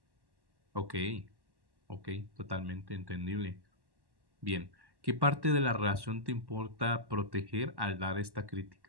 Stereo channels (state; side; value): late; left; 1.1 ms